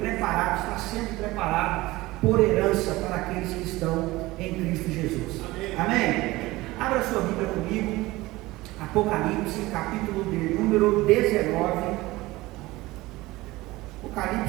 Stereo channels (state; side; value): quieter; left; 19.5 dB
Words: está sendo preparado por herança para aqueles que estão em Cristo Jesus. Amém? Abra sua Bíblia comigo, Apocalipse, capítulo de número 19.